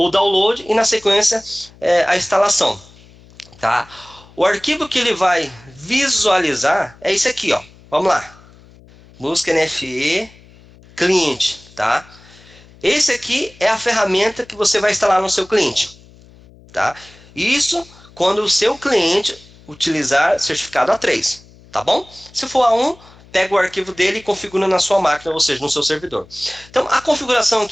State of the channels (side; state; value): left; noise; hum, 25 dB below the sound